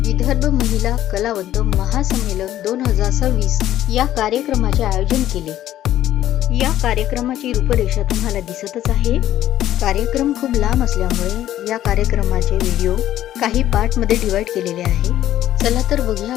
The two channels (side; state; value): right; quieter; 12.7 dB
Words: विदर्भ महिला कलावंत महासंमेलन 2026 या कार्यक्रमाचे आयोजन केले। या कार्यक्रमाची रूपरेषा तुम्हाला दिसतच आहे। कार्यक्रम खूप लांब असल्यामुळे या कार्यक्रमाचे व्हिडिओ काही पार्ट मध्ये डिवाइड केलेले आहे। चला तर बघूया